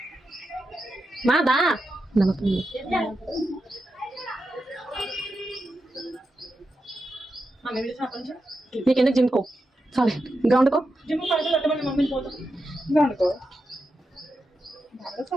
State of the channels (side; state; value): both; normal; correlation 0.88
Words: మాదా నీకెందుకు జిమ్కో చాలే గ్రౌండ్కో. జిమ్ పడుతుంది మమ్మీని పోతాం గ్రౌండ్కో